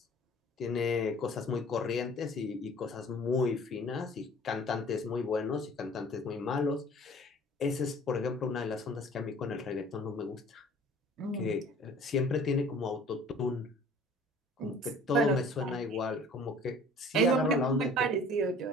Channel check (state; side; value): normal; both; correlation 0.49